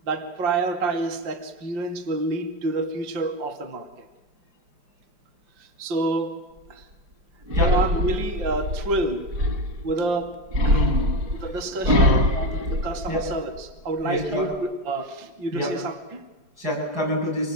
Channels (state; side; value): late; left; 5.1 ms